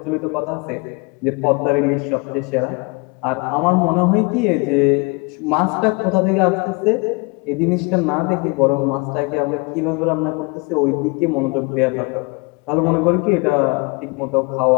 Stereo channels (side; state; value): right; quieter; 29.1 dB